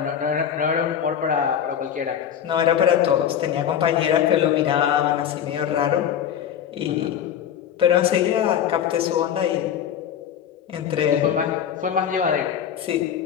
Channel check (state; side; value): quieter; right; 9.2 dB